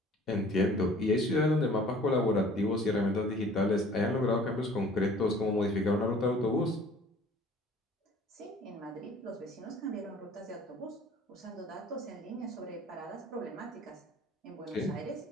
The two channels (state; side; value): normal; both; correlation 0.51